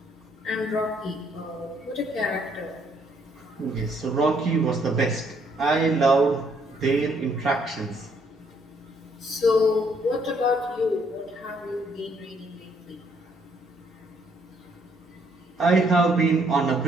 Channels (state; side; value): normal; both; correlation 0.68